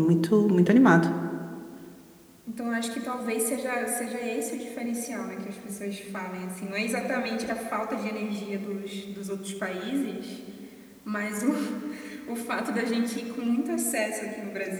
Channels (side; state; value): both; identical; correlation 1.00